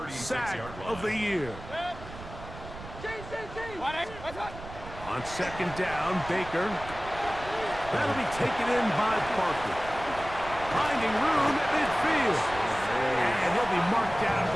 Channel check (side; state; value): right; noise; rumble, 13 dB below the sound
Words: sack of the year. What's that? On 2nd down, Baker. That'll be taken in by Parker. Finding room at midfield. And he'll be marked down at